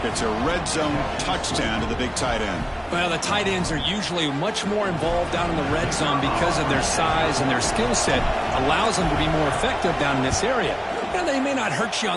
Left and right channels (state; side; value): identical; both; correlation 1.00